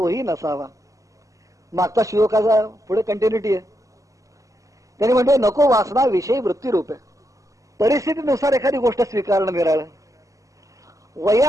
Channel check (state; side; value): late; left; 0.16 ms